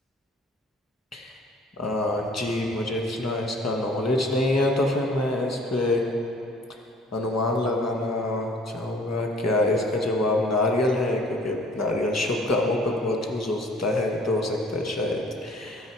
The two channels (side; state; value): both; normal; correlation 0.54